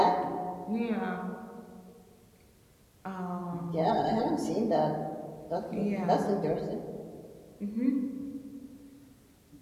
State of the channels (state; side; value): identical; both; correlation 1.00